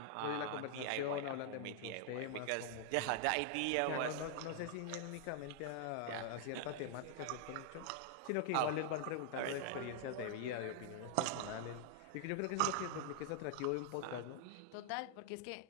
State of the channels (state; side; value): different; both; correlation -0.01